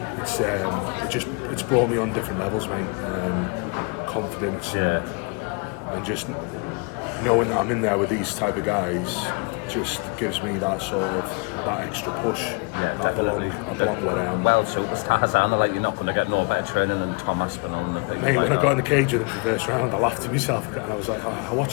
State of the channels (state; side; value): quieter; right; 31.7 dB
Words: It's brought me on different levels, mate. Confidence, and just knowing that I'm in there with these type of guys just gives me that extra push. Yeah, I belong where I am. Well, superstars are like, you're not going to get no better training than Tom Aspinall. Mate, when I got in the cage with him for the first round, I laughed to myself and I was like, I